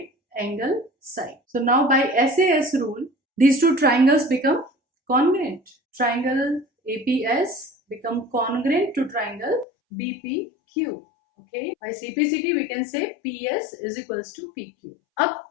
angle, side. So now by SAS rule, these two triangles become congruent. Triangle APS become congruent to triangle BPQ. Okay, by CPCT we can say PS is equals to PQ. अब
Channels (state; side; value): drops out; right; at 9.7 s